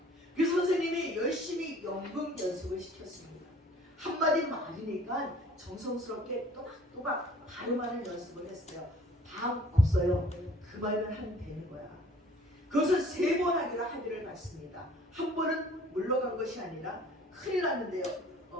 그래서 선생님이 열심히 연극 연습을 시켰습니다. 한마디 말이니까 정성스럽게 또박또박 발음하는 연습을 했어요. 방 없어요. 그 말만 하면 되는 거야. 그것을 3번 하기를 받습니다. 한 번은 물러간 것이 아니라 큰일 났는데요.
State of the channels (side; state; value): both; normal; correlation 0.53